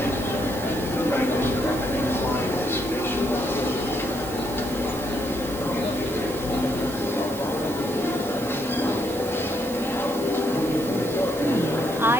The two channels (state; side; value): noise; right; hiss, 13 dB below the sound